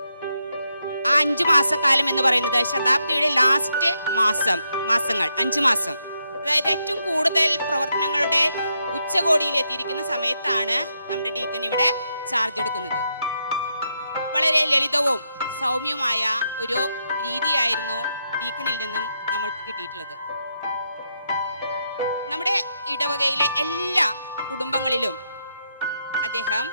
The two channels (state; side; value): inverted; both; correlation -0.81